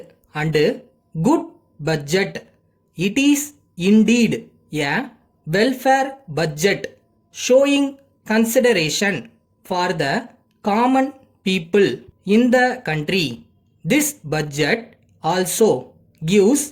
and good budget. It is indeed a welfare budget showing consideration for the common people in the country. This budget also gives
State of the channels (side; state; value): both; identical; correlation 1.00